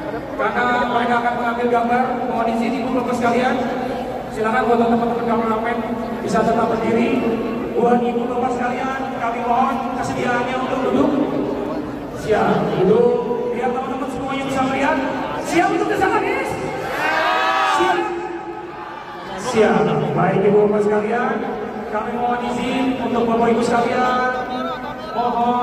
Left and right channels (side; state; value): both; identical; correlation 1.00